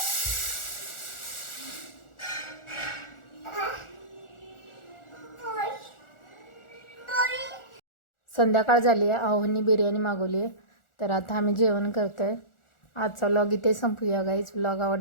संध्याकाळ झाली आहे. आहोंनी बिर्याणी मागवली आहे, तर आता आम्ही जेवण करतोय. आजचा व्लॉग इथे संपूया गाईज. व्लॉग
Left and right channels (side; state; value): right; late; 1.4 ms